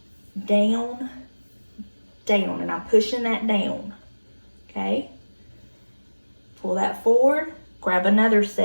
down, down, and I'm pushing that down, okay? Pull that forward, grab another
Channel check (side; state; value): both; inverted; correlation -1.00